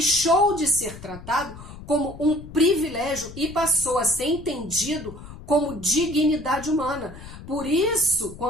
de ser tratado como um privilégio e passou a ser entendido como dignidade humana. Por isso,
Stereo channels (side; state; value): left; noise; rumble, 15 dB below the sound